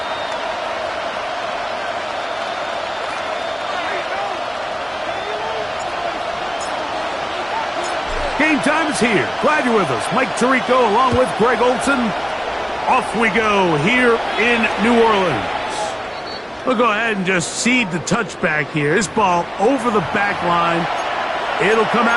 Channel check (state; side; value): identical; both; correlation 1.00